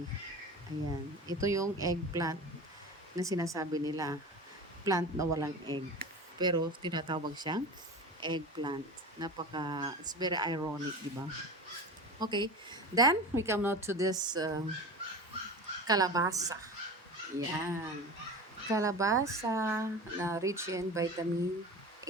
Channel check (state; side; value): normal; both; correlation 0.32